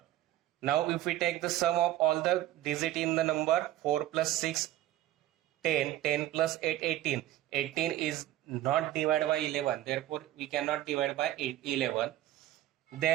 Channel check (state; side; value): quieter; left; 14.2 dB